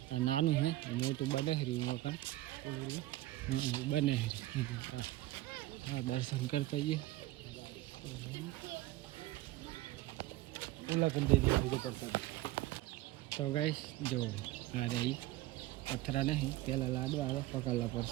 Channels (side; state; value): left; quieter; 17.0 dB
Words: આ નાનું હે, મોટું બને હરી મકાન. હા બને હરી. હા દર્શન કરતા જઈએ. તો ગાઈસ જો આ રહી પથરા નહીં, પેલા લાડવા આવે પકડલા